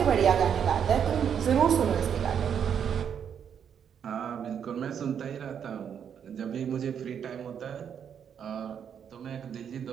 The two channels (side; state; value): left; quieter; 8.0 dB